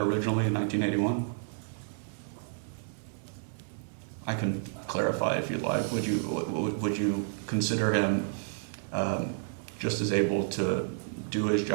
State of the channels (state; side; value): silent; left; digital silence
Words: in 1981? I can clarify if you'd like. Would you consider him just as able to do his